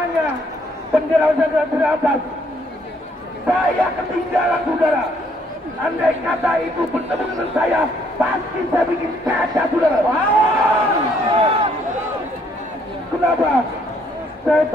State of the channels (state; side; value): normal; both; correlation 0.67